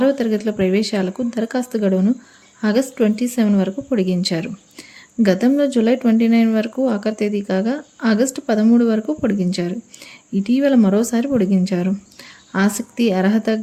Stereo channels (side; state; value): both; identical; correlation 1.00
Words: తరగతుల ప్రవేశాలకు దరఖాస్తు గడువును ఆగస్టు 27 వరకు పొడిగించారు. గతంలో జూలై 29 వరకు ఆఖరి తేదీ కాగా ఆగస్టు 13 వరకు పొడిగించారు. ఇటీవల మరోసారి పొడిగించారు. ఆసక్తి, అర్హత